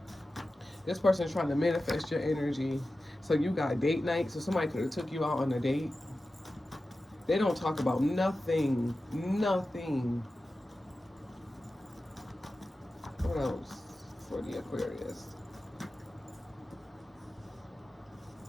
This person is trying to manifest your energy. So you got date night. So somebody could have took you out on a date. They don't talk about nothing. Nothing. What else for the Aquarius?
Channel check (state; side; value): normal; both; correlation 0.94